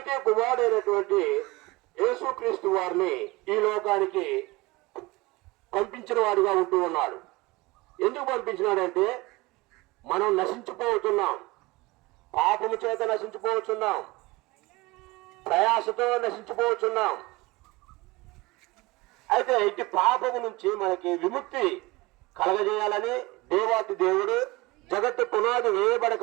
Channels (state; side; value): quieter; left; 22.2 dB